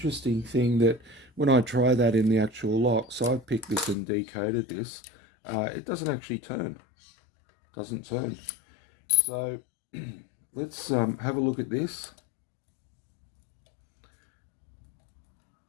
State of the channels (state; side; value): drops out; right; at 4.0 s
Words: thing, that when I try that in the actual lock, so I've picked this and decoded this, it doesn't actually turn. Doesn't turn. So let's have a look at this.